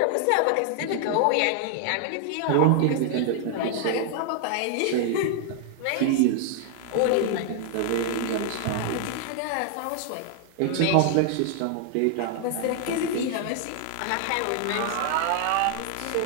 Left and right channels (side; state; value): both; different; correlation 0.00